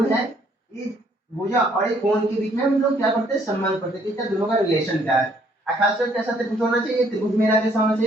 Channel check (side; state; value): both; normal; correlation 0.65